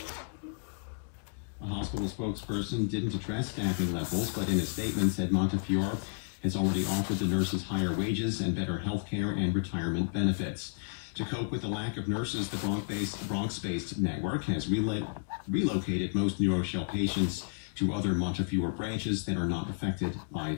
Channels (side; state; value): right; silent; digital silence